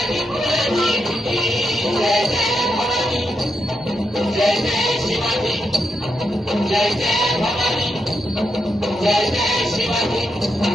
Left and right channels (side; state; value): both; normal; correlation 0.83